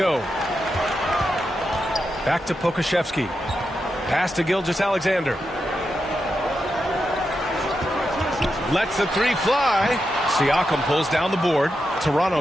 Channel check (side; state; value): both; normal; correlation 0.87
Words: Back to Pokusevski. Pass to Gilgeous-Alexander. Lets the 3 fly. Siakam pulls down the board.